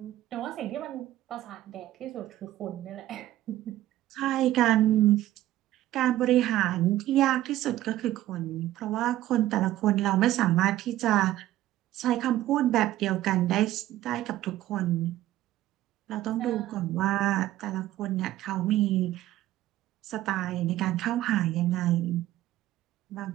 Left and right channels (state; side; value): quieter; left; 14.4 dB